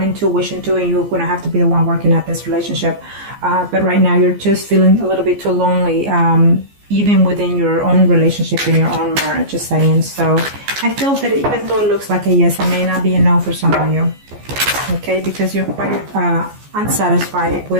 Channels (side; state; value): left; late; 14 ms